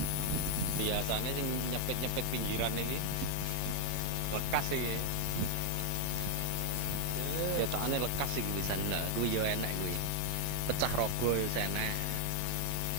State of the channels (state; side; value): different; both; correlation 0.00